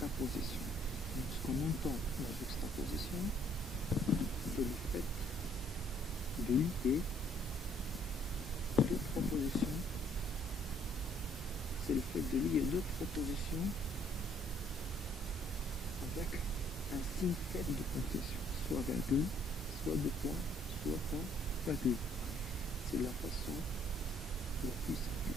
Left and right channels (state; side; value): normal; both; correlation 0.63